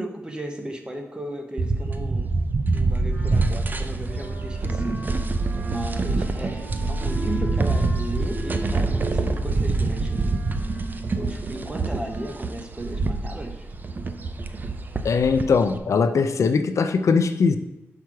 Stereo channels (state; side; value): normal; both; correlation 0.81